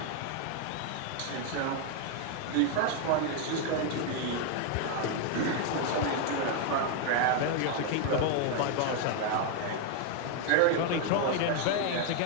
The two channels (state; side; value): different; both; correlation 0.01